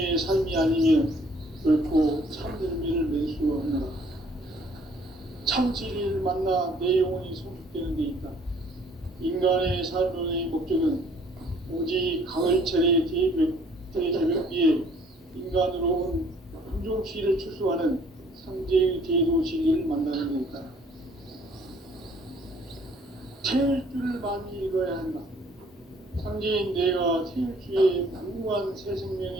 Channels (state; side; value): normal; both; correlation 0.59